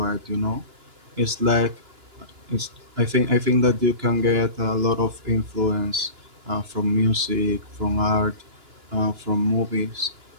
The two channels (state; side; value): late; left; 2.9 ms